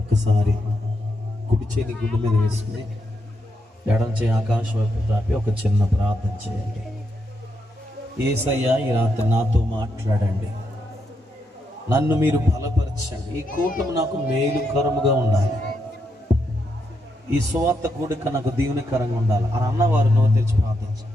కుడి చేతి గుండె మీద వేసుకుని ఎడం చేయి ఆకాశం వైపు తాపి ఒక చిన్న ప్రార్థన చేయండి. యేసయ్యా, ఈ రాత్రి నాతో మాట్లాడండి. నన్ను మీరు బలపరచండి. ఈ కూటమి నాకు మేలుకరముగా ఉండాలి. ఈ సువార్త కూడిక నాకు దీవెనకరంగా ఉండాలి అని అన్నవారు నోరు తెరిచి ప్రార్థించండి.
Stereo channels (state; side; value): normal; both; correlation 0.81